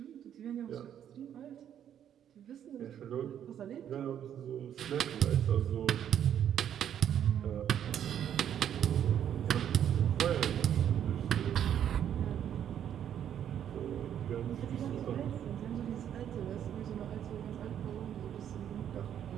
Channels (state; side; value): quieter; left; 9.7 dB